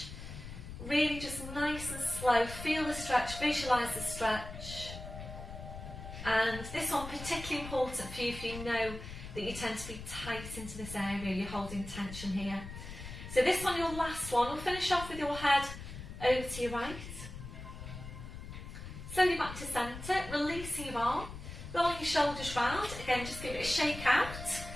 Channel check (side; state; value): left; noise; rumble, 10 dB below the sound